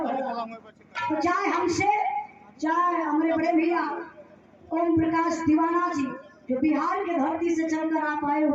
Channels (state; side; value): identical; both; correlation 1.00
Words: भला। तो चाहे हमसे, चाहे हमारे बड़े भैया ओम प्रकाश दीवाना जी जो बिहार के धरती से चलकर आप आए